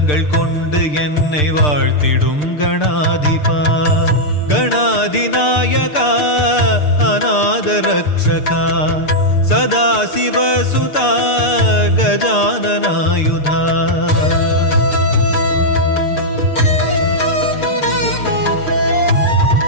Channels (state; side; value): late; right; 6.7 ms